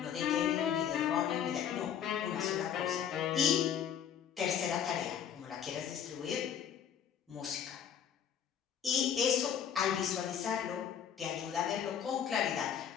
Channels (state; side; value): quieter; right; 8.7 dB